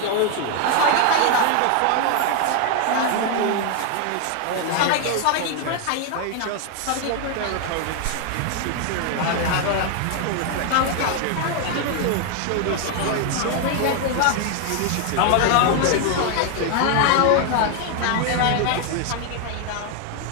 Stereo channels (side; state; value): both; different; correlation 0.01